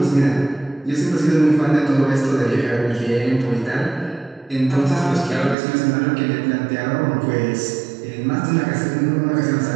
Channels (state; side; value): drops out; left; at 5.6 s